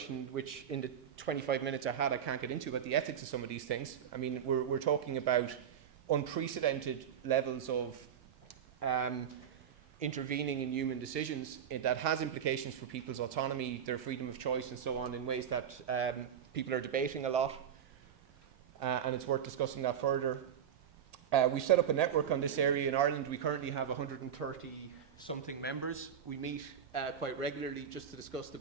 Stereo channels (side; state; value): left; quieter; 8.7 dB